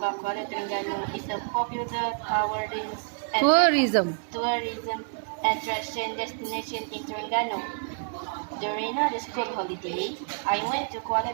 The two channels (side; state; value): left; silent; digital silence